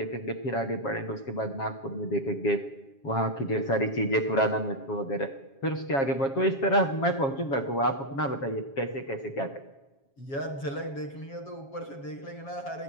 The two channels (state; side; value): late; right; 7.3 ms